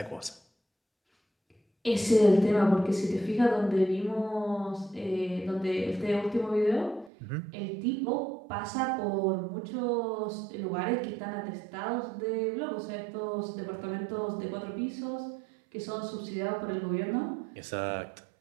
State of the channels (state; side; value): drops out; left; at 7.1 s